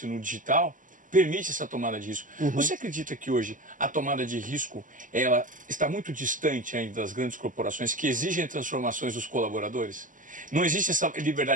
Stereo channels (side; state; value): left; late; 0.38 ms